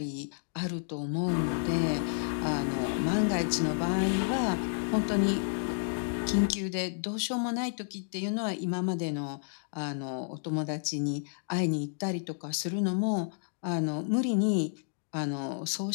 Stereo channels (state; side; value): silent; right; digital silence